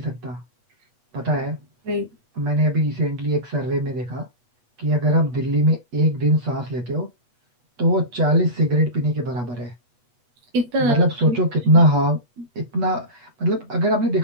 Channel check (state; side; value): late; left; 8.3 ms